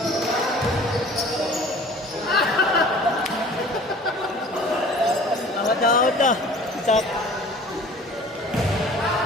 Awat dah. Cak.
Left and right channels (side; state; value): both; normal; correlation 0.47